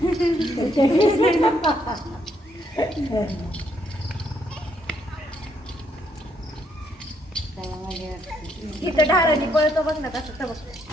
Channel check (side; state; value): both; normal; correlation 0.73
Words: इथं ढारांनी पळतो बघ ना कसं बघ.